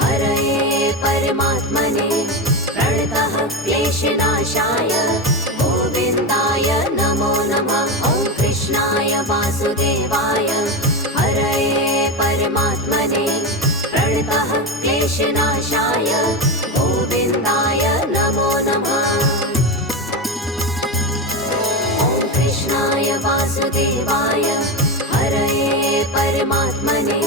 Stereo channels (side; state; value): both; normal; correlation 0.17